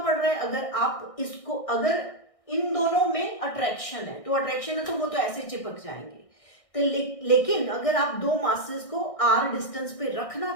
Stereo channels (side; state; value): right; late; 1.6 ms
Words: रहा है, अगर आप इसको, अगर इन दोनों में अट्रैक्शन है, तो अट्रैक्शन है तो वो तो ऐसे चिपक जाएंगे। तो लेकिन अगर आप दो मासेस को r डिस्टेंस पे